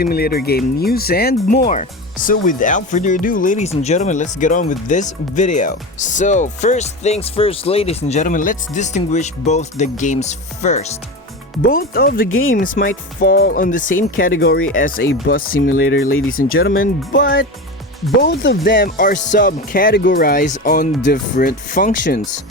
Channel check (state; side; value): normal; both; correlation 0.25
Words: game news and more. So without further ado, ladies and gentlemen, let's get on with this video. So first things first, ladies and gentlemen, let's distinguish both the games first. Both of the games might fall on the same category as a bus simulator, ladies and gentlemen, but both of them are subcategorized on different functions.